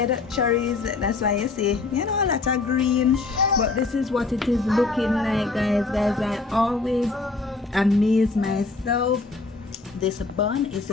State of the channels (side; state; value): right; quieter; 3.8 dB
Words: cherries. That's why you see, you know, a lot of green. But this is what it is looking like, guys. I always amaze myself. This bun is